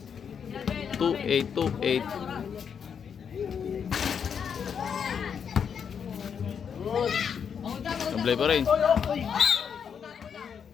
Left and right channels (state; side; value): quieter; right; 7.2 dB